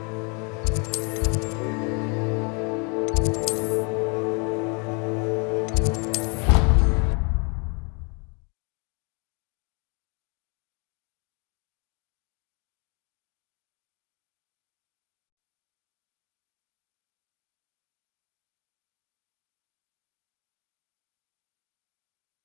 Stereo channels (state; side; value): quieter; right; 34.2 dB